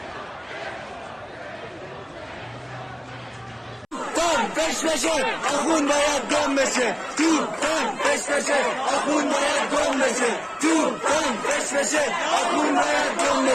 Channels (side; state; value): both; identical; correlation 1.00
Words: peşe akun bayat dönmesin. Türk'ten peş peşe akun bayat dönmesin. Türk'ten peş peşe akun bayat